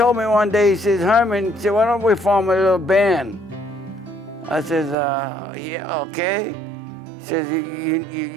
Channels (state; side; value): drops out; left; at 5.0 s